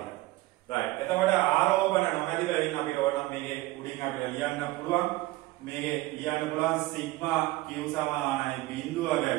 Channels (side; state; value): left; quieter; 18.8 dB